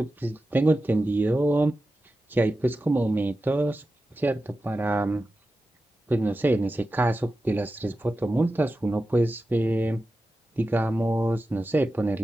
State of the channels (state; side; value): normal; both; correlation 0.93